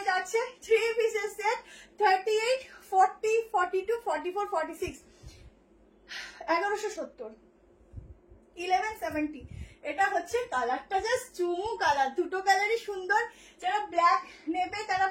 যাচ্ছে। 3 পিসের সেট, 38, 40, 42, 44, 46, 1170, 1170। এটা হচ্ছে কালারটা জাস্ট চুমু কালার, দুটো কালারই সুন্দর। যারা ব্ল্যাক নেবে তারা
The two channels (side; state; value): both; identical; correlation 1.00